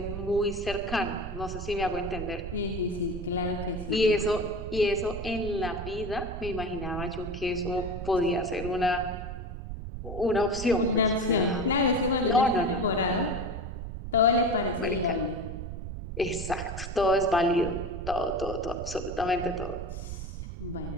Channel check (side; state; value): right; noise; rumble, 7 dB below the sound